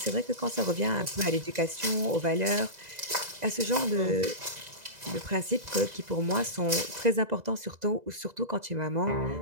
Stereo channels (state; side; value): late; left; 2.0 ms